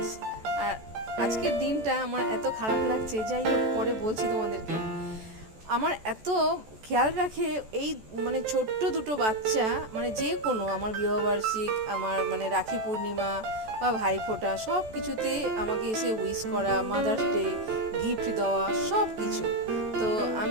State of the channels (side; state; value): left; late; 14 ms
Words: আর আজকের দিনটা আমার এত খারাপ লাগছে, যাই হোক পরে বলছি তোমাদেরকে। আমার এত খেয়াল রাখে এই মানে ছোট্ট দুটো বাচ্চা, মানে যে কোনো আমার বিবাহবার্ষিক, আমার মানে রাখি পূর্ণিমা বা ভাইফোঁটা, সব কিছুতে আমাকে এসে উইশ করা, মাদার্স ডে গিফট দেওয়া, সব কিছু। তো